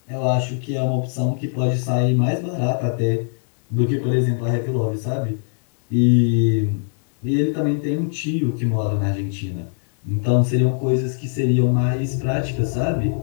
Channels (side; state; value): right; silent; digital silence